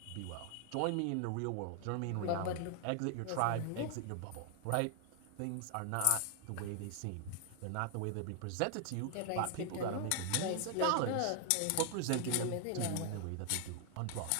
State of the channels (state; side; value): different; both; correlation 0.00